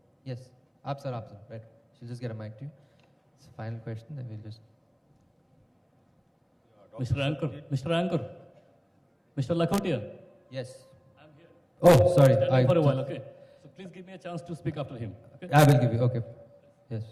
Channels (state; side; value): identical; both; correlation 1.00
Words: Yes, आप sir, right. She'll just get a mic to you. It's a final question, then we'll just. Mr. Anchor, Mr. Lakhotia. Yes. I'm here. Oh, sorry. For a while, okay. So please give me a chance to speak after him. Okay? I will give you. Okay. Yes,